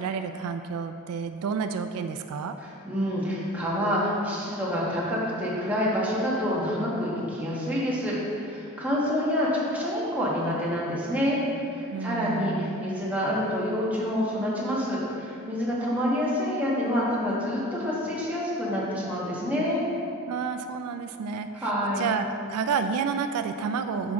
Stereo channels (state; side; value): normal; both; correlation 0.39